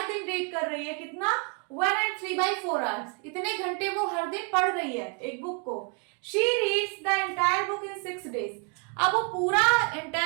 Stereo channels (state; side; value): quieter; left; 35.4 dB